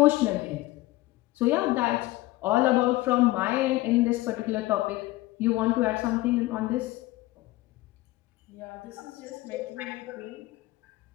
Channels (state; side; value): quieter; right; 18.7 dB